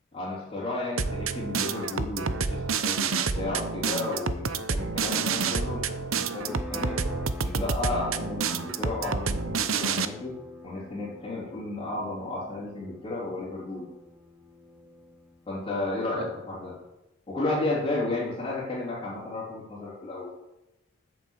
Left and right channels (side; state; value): both; normal; correlation 0.33